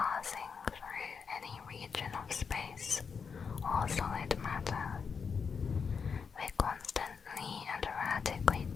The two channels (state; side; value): quieter; right; 5.9 dB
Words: through any region of space or solid matter. They constantly and erratically